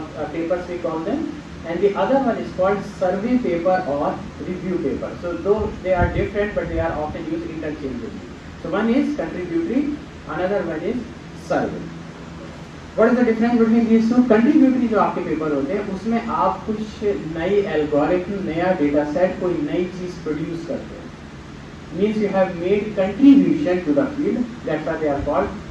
papers we call them, and the other one is called survey paper or review paper. So though they are different, but they are often used interchangeably. So one is contributory, another one is survey. What is the difference between these two? Contributory जो आपके paper होते हैं उसमें आप कुछ नई algorithm, नया data set, कोई नई चीज प्रोड्यूस करते हैं. Means you have made contribution to the field. That's why they are called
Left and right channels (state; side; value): identical; both; correlation 1.00